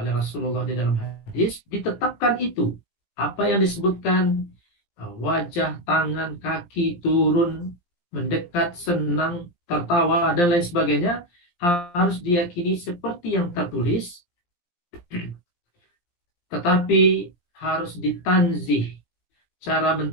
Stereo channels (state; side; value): late; right; 17 ms